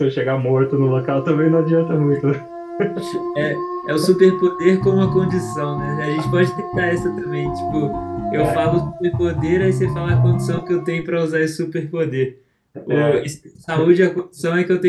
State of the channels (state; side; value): identical; both; correlation 1.00